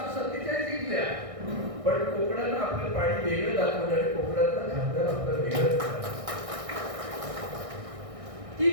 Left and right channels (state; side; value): late; left; 1.6 ms